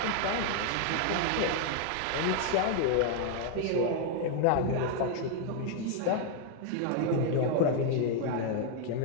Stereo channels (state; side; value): different; both; correlation 0.00